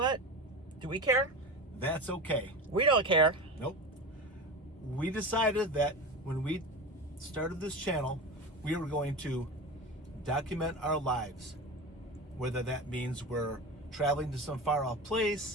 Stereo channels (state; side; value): normal; both; correlation 0.27